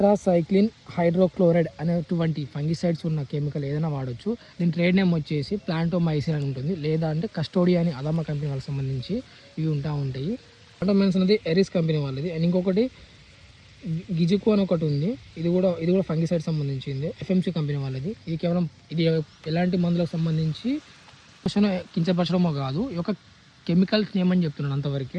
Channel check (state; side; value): identical; both; correlation 1.00